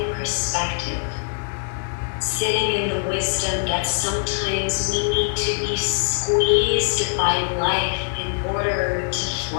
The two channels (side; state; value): right; silent; 63 dB below the other